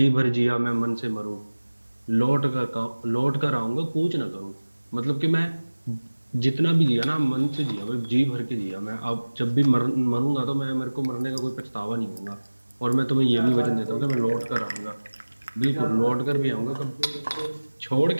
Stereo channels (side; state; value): both; inverted; correlation -1.00